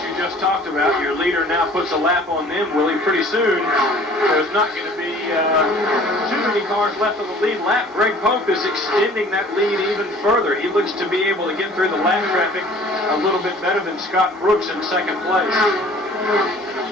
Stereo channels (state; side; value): normal; both; correlation 0.50